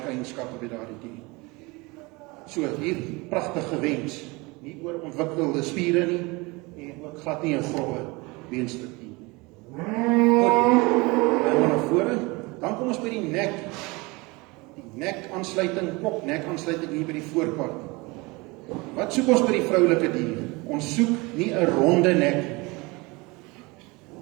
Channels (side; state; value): left; quieter; 25.0 dB